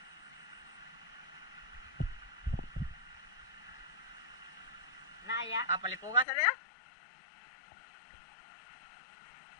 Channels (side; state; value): right; drops out; at 6.2 s